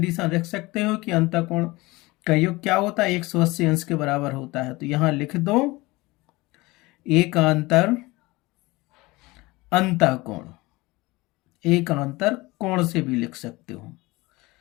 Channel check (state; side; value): quieter; right; 21.7 dB